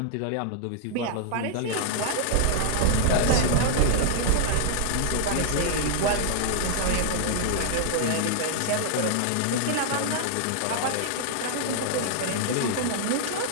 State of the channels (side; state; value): both; different; correlation 0.00